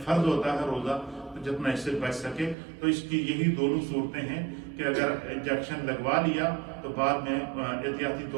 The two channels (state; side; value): drops out; left; at 2.6 s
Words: فرض ہوتا ہے روزہ، جتنا اس سے بچ سکے. تو اس کی یہی دونوں صورتیں ہیں کہ اگر انجیکشن لگوا لیا تو بعد میں احتیاطی